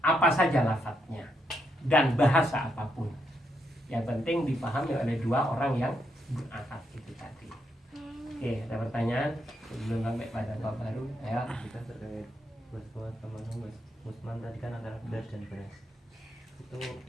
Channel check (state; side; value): normal; both; correlation 0.79